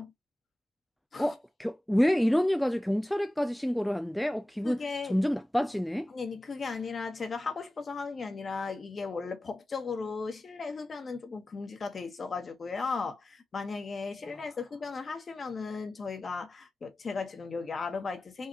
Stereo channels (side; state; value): both; normal; correlation 0.96